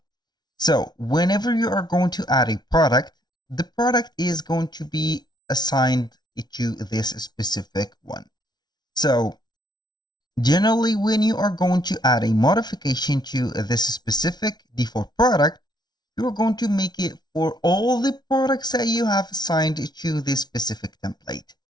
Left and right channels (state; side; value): late; right; 0.20 ms